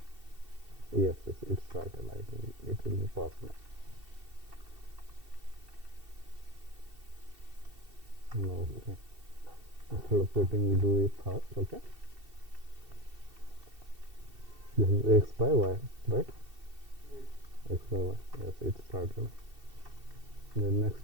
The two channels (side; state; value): left; late; 2.7 ms